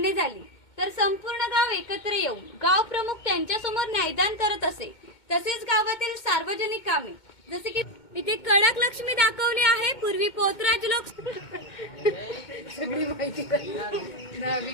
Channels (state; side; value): late; right; 2.2 ms